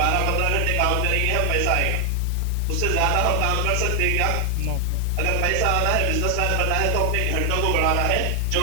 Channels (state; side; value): different; both; correlation 0.00